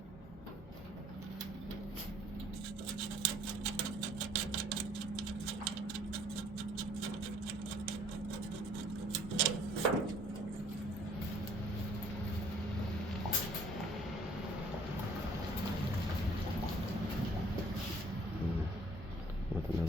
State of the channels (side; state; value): both; normal; correlation 0.58